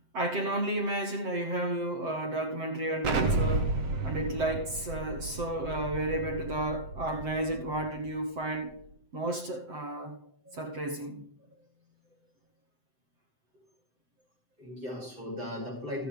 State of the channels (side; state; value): left; late; 7.8 ms